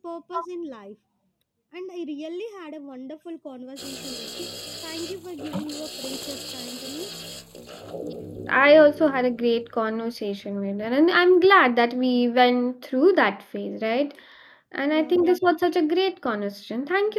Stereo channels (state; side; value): identical; both; correlation 1.00